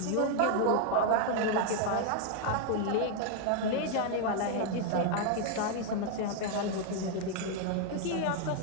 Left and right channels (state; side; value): different; both; correlation 0.00